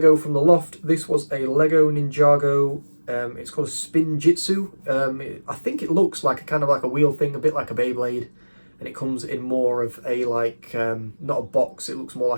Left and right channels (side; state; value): both; inverted; correlation -1.00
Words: from the loft. This was a Lego Ninjago. It's called a Spin Jitsu. I think it looks like a wheel thing, a bit like a Beyblade. And it comes in more of a not a box, it looks more